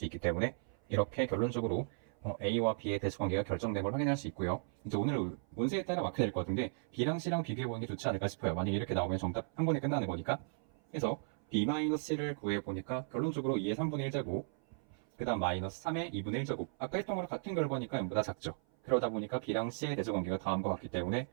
있기 때문에 이렇게 결론적으로 A와 B의 대수관계가 결정된 걸 확인할 수 있고요. 이제 오늘 문제에 따라 마크 될 것 같은데 B랑 C랑 비교해보는 게 좋지 않을까 싶어요. 만약에 이렇게 나오면 정답 한 번에 끝나는 거니까. 그래서 B-C를 구해보니까 결론적으로 2의 3분의 1제곱, 그 다음 마이너스 3의 2분의 1제곱. 아까 했던 거랑 같은 결과니까 0보다 작죠. 그러다 보니까 B랑 C의 대수관계가 다음과 같기 때문에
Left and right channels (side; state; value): left; silent; 54 dB below the other